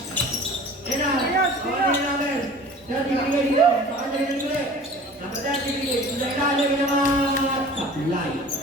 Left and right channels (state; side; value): normal; both; correlation 0.44